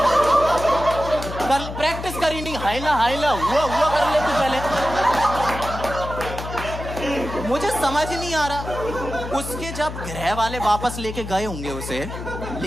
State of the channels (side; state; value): left; noise; hum, 8 dB below the sound